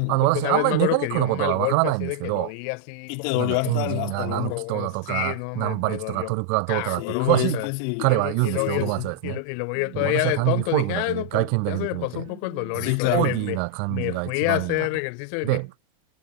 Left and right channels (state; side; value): different; both; correlation -0.01